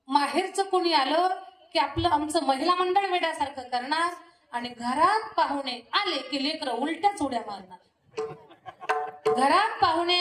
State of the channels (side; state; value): both; identical; correlation 1.00